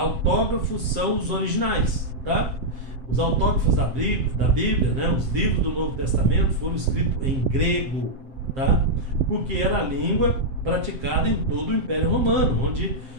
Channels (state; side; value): late; left; 7.5 ms